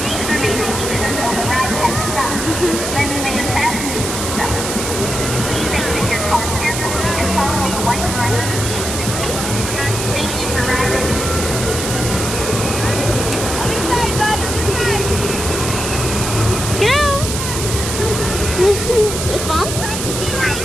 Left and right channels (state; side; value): noise; right; hiss, 4 dB below the sound